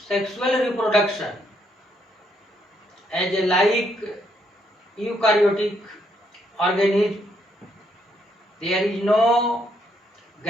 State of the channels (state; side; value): normal; both; correlation 0.74